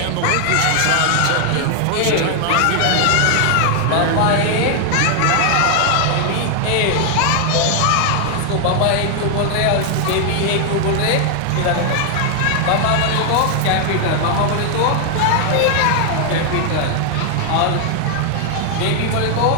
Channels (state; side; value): different; both; correlation 0.00